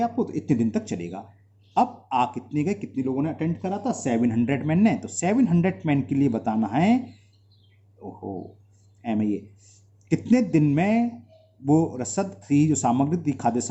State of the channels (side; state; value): both; identical; correlation 1.00